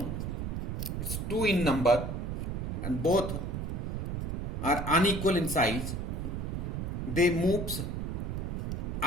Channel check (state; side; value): noise; right; rumble, 3 dB below the sound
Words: It's 2 in number and both are unequal in size. They moves